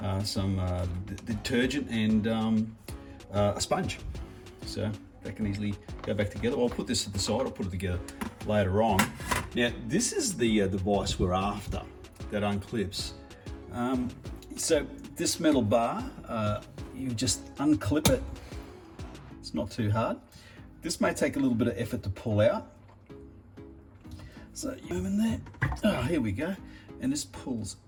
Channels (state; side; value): identical; both; correlation 1.00